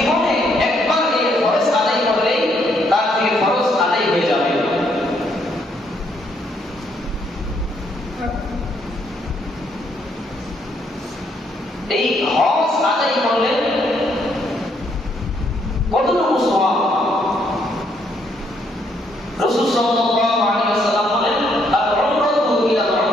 একবার এই ফরজ আদায় করলেই তার থেকে ফরজ আদায় হয়ে যাবে। এই হজ আদায় করলে কতটুকু সওয়াব? রাসূল সাল্লাল্লাহু আলাইহি ওয়াসাল্লাম বলেন, আল-উমরাতু ইলা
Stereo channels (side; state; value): both; normal; correlation 0.72